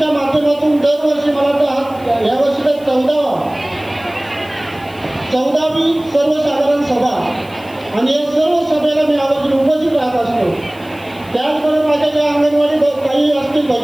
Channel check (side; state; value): left; noise; hiss, 25 dB below the sound